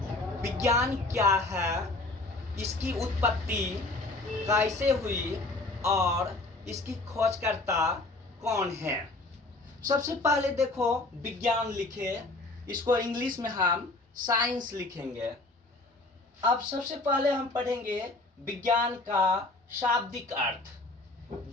विज्ञान क्या है, इसकी उत्पत्ति कैसे हुई और इसकी खोजकर्ता कौन है। सबसे पहले देखो विज्ञान लिखे, इसको इंग्लिश में हम साइंस लिखेंगे। अब सबसे पहले हम पढ़ेंगे विज्ञान का शाब्दिक अर्थ।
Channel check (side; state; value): right; quieter; 3.0 dB